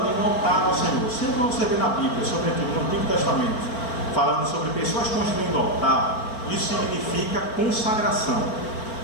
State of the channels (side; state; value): right; late; 4.4 ms